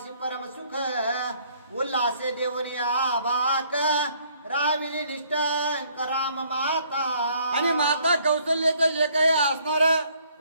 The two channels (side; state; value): both; inverted; correlation -0.63